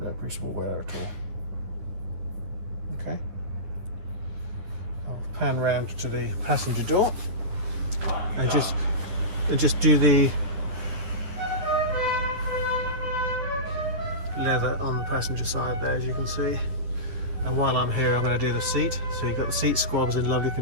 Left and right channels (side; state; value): left; late; 10 ms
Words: appreciable wear at all. Okay. I'll pan round to the passenger door and just do the leather on the passenger side there, as you can see. And while I'm here, I'm going to do the seat. So you've got the seat squabs in lovely